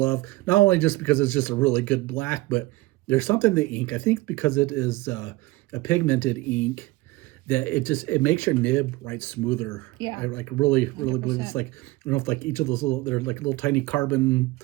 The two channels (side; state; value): left; quieter; 20.6 dB